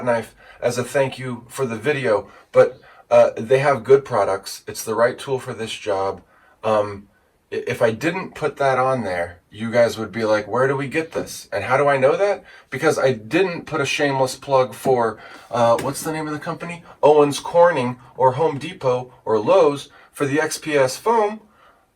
knife as a thank you for the video, but they have good products. It's the right tool for this job. If I didn't put that on there, you guys would be like, where do we get this? And how do I know that? Because I didn't put a shameless plug for, what's the name of the company? Owens Corning or Home Depot or Lowe's for the XPS foam.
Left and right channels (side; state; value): both; identical; correlation 1.00